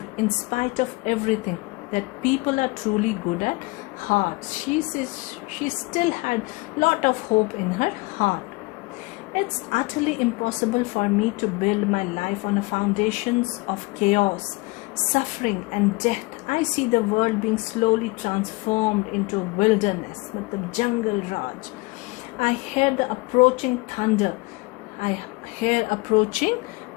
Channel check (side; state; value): right; quieter; 24.2 dB